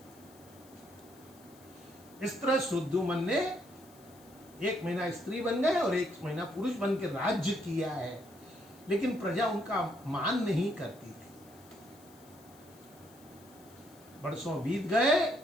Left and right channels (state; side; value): noise; left; hiss, 25 dB below the sound